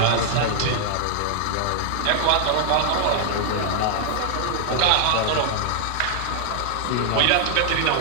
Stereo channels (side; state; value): both; different; correlation 0.00